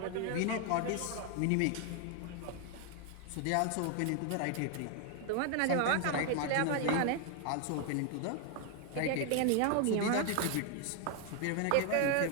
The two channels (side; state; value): both; different; correlation 0.01